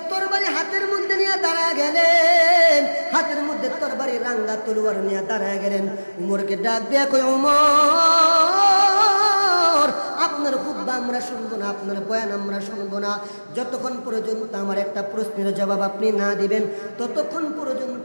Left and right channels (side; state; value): both; inverted; correlation -1.00